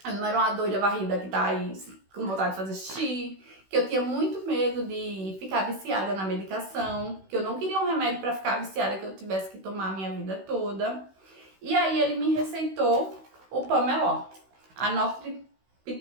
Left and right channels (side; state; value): left; late; 16 ms